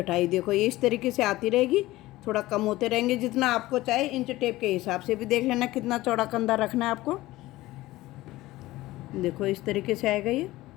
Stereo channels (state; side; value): quieter; right; 17.7 dB